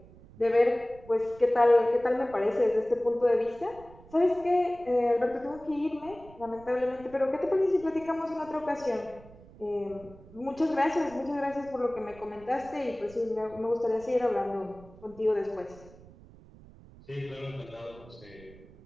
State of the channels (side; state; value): right; noise; rumble, 21 dB below the sound